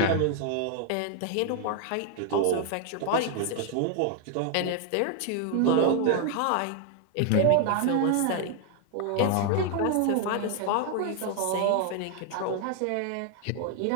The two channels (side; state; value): both; different; correlation 0.00